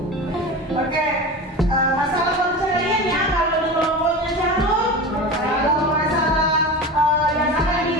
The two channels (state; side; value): normal; both; correlation 0.29